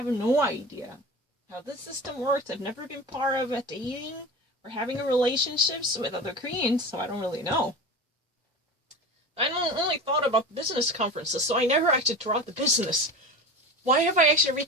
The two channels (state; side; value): normal; both; correlation 0.30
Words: no idea how this system works. I've never been part of a dating or having a relationships with other Koreans, so I don't really know. I only thought about business conferences, so I never actually taught the business. Why have I actually